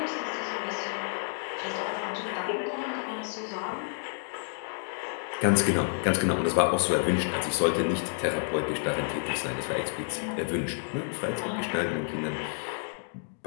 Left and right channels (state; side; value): silent; right; digital silence